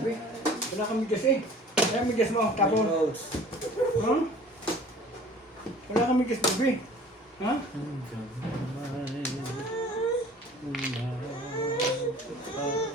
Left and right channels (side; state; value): both; normal; correlation 0.48